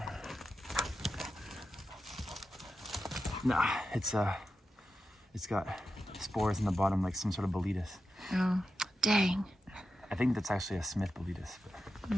Nah, it's got spores in the bottom, like some sort of boletus. Oh, dang. I think that's actually a Smith boletus, but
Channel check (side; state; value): both; normal; correlation 0.90